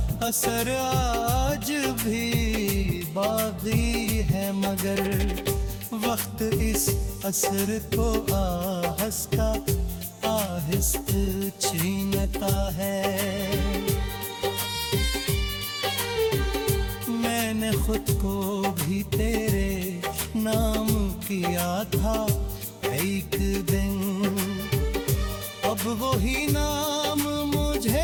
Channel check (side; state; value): both; identical; correlation 1.00